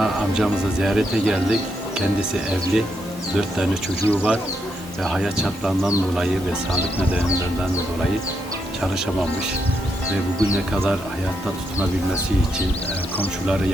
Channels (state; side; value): normal; both; correlation 0.80